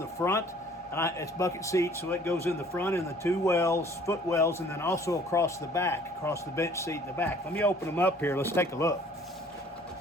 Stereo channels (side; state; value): both; normal; correlation 0.55